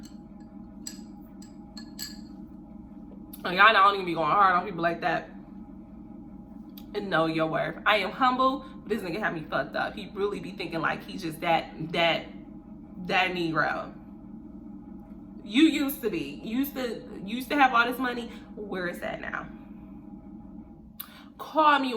Y'all don't even be going hard on people like that. And know your worth. I am humble, but this nigga had me fucked up. He really be thinking like he's just that Negro. You used to be. Used to have all this money. Where is that now? Call me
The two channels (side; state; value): both; identical; correlation 1.00